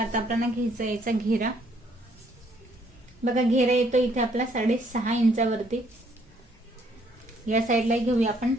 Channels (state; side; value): normal; both; correlation 0.66